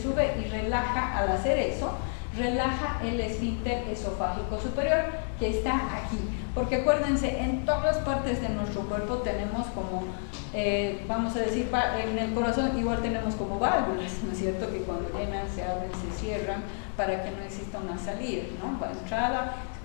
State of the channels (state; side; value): silent; right; 58 dB below the other